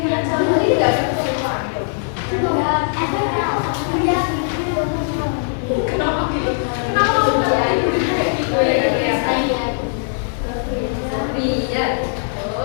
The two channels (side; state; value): right; silent; digital silence